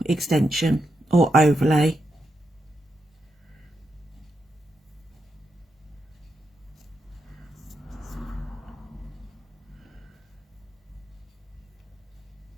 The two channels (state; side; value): normal; both; correlation 0.84